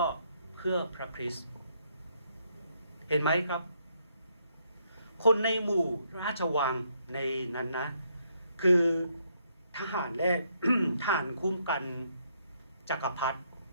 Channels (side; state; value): both; inverted; correlation -0.73